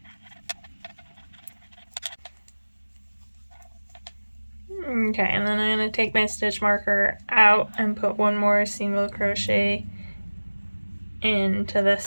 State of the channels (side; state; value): both; inverted; correlation -1.00